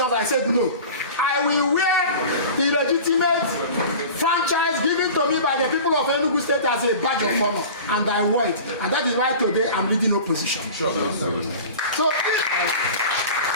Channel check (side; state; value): both; inverted; correlation -0.37